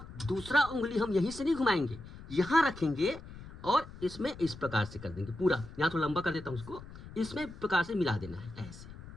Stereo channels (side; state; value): left; noise; rumble, 15 dB below the sound